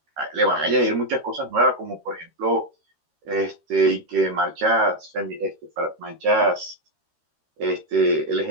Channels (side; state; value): left; late; 13 ms